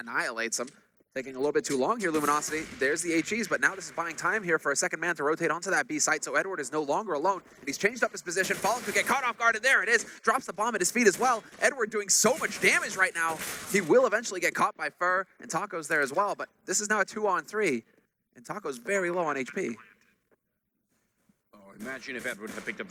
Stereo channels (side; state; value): both; identical; correlation 1.00